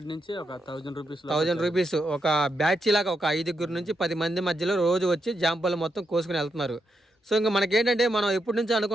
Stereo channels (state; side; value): normal; both; correlation 0.82